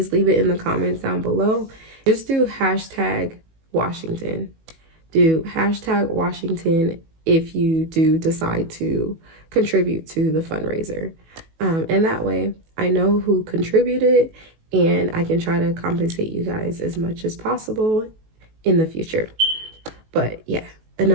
leave it in the comments down below. Just do #Washington. Do #Washington if you do decide to contribute to the fundraiser. And that way I know who contributed, and I can try to compensate you guys as much as possible in the future. But yeah,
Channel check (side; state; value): left; late; 18 ms